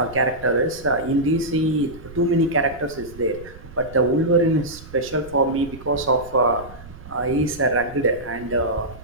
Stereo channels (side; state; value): right; noise; rumble, 17 dB below the sound